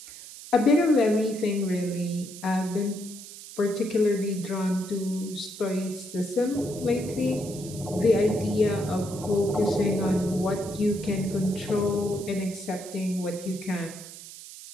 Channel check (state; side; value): noise; right; hiss, 14 dB below the sound